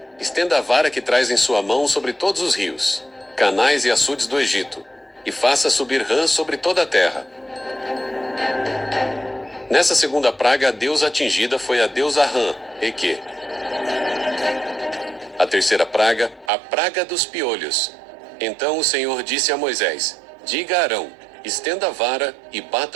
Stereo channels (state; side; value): drops out; left; at 16.5 s